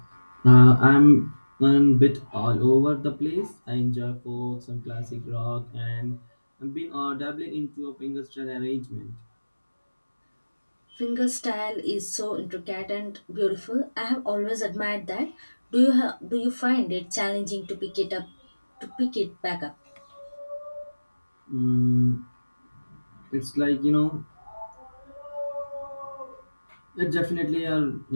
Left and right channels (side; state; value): both; inverted; correlation -1.00